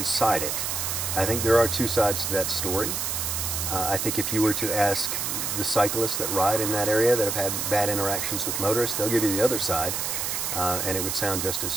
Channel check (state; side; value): noise; right; hiss, 1 dB below the sound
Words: I think there are two sides to that story. I think if you were to ask the cyclists that ride in that area that have had bad interactions with motorists, they'll give you the other side, and it would sound just as